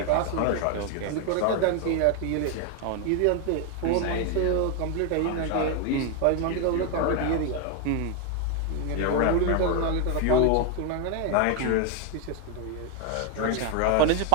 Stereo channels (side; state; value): both; different; correlation 0.01